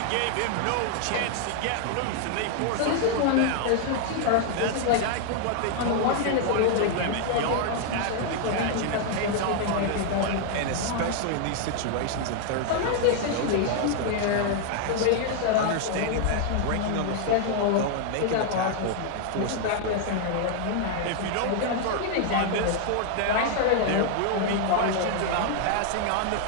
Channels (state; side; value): different; both; correlation 0.00